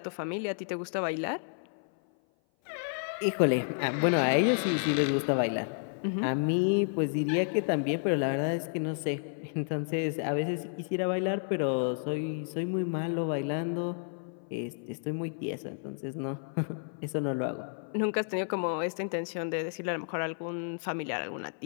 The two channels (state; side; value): silent; right; 56 dB below the other